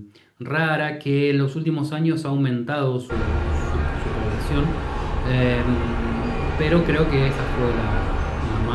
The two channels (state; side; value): identical; both; correlation 1.00